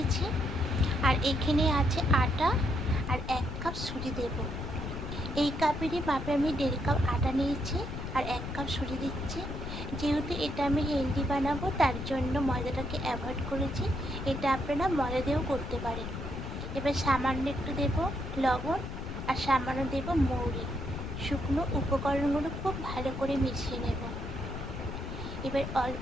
আর এখানে আছে আটা আর 1 কাপ সুজি দেব। এই কাপেরই মাপে আমি 1.5 কাপ আটা নিয়েছি আর 1 কাপ সুজি দিচ্ছি। যেহেতু এটা আমি হেলদি বানাবো তার জন্য ময়দাটাকে অ্যাভয়েড করেছি, এটা আপনারা ময়দা দিয়েও করতে পারেন। এবার সামান্য একটু দেব লবণ আর সামান্য দেব মৌরি। শুকনো উপকরণগুলো খুব ভালো করে মিশিয়ে নেব। এবার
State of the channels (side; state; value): left; noise; rumble, 7 dB below the sound